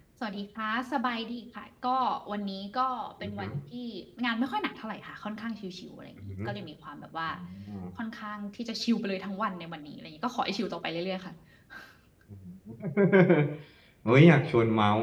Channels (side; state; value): both; identical; correlation 1.00